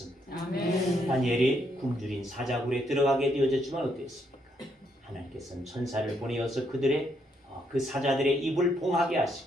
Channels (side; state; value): both; normal; correlation 0.75